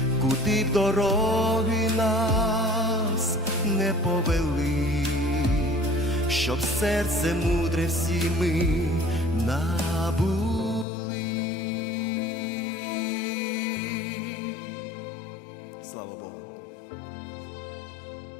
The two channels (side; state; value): right; drops out; at 10.9 s